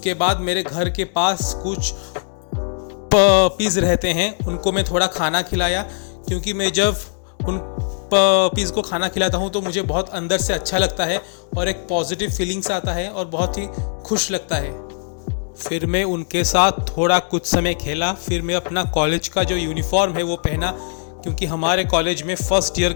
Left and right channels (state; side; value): silent; right; 65 dB below the other